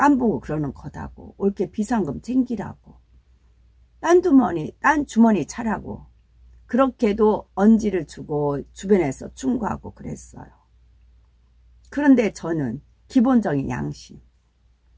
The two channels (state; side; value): identical; both; correlation 1.00